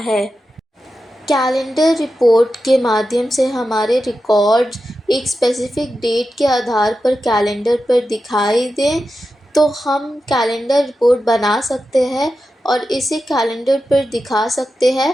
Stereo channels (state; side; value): normal; both; correlation 0.91